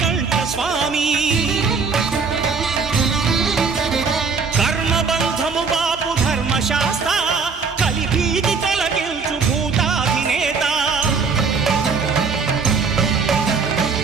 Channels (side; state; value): left; quieter; 5.1 dB